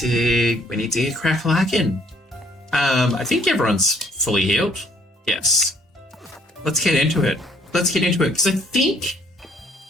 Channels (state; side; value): normal; both; correlation 0.63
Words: get crack-lacking. I think everyone's fully healed. Yes. Let's get into it. Because I think